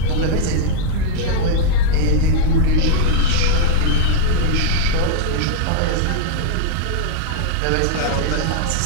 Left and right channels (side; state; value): both; different; correlation -0.01